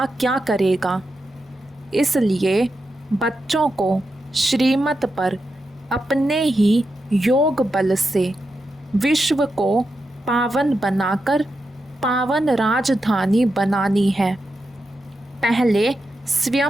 क्या करेगा? इसलिए बच्चों को श्रीमत पर अपने ही योग बल से विश्व को पावन बनाकर पावन राजधानी बनानी है। पहले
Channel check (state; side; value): normal; both; correlation 0.87